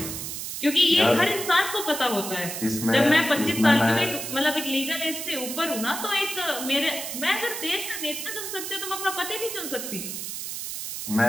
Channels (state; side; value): noise; right; hiss, 6 dB below the sound